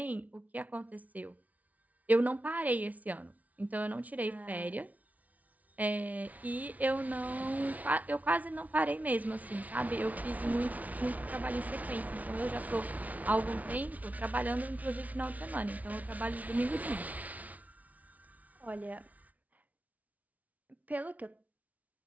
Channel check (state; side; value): late; left; 0.072 ms